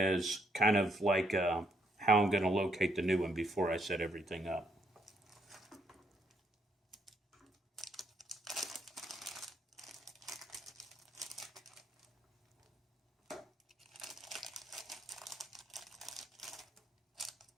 kind of like how I'm going to locate the new one before I set everything up.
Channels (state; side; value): normal; both; correlation 0.73